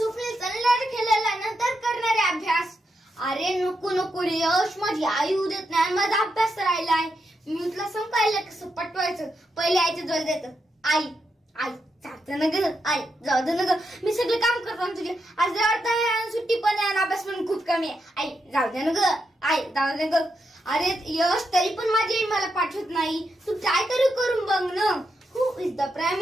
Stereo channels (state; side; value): normal; both; correlation 0.84